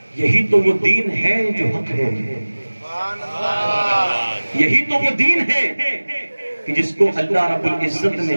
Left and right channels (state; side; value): inverted; both; correlation -1.00